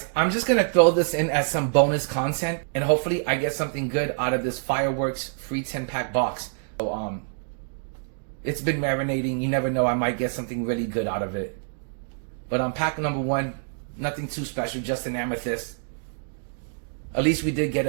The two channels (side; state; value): left; silent; digital silence